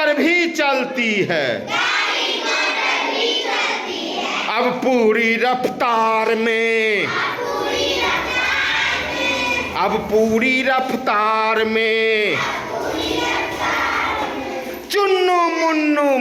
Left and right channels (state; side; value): identical; both; correlation 1.00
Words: भी चलती है, अब पूरी रफ्तार में, अब पूरी रफ्तार में, चुन्नू मुन्नू